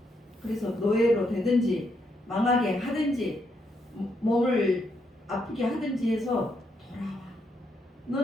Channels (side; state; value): both; normal; correlation 0.77